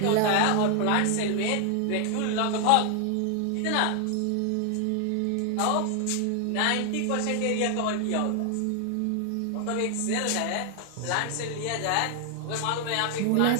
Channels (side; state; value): both; different; correlation 0.00